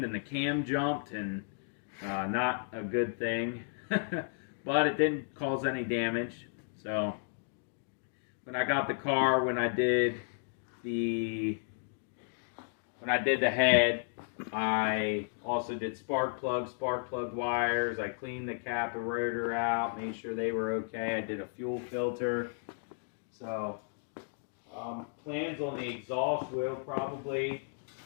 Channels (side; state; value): right; silent; digital silence